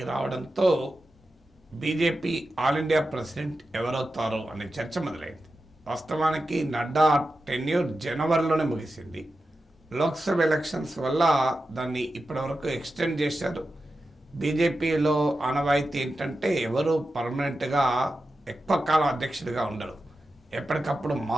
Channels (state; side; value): normal; both; correlation 0.91